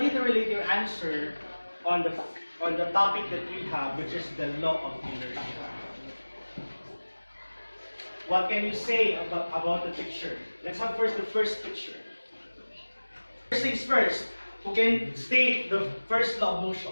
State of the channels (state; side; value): inverted; both; correlation -1.00